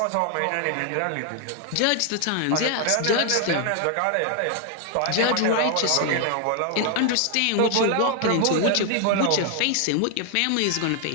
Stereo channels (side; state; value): both; different; correlation 0.00